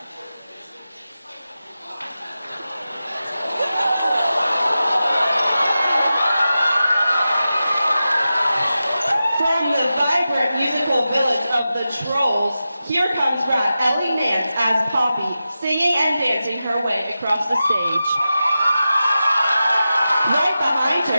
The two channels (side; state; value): both; inverted; correlation -0.92